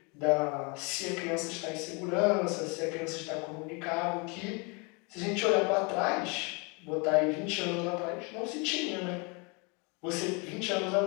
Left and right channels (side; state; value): right; quieter; 30.9 dB